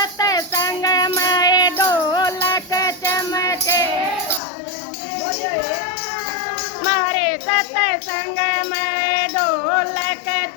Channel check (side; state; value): right; drops out; at 4.4 s